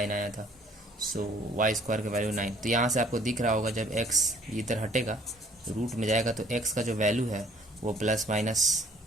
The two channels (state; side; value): normal; both; correlation 0.58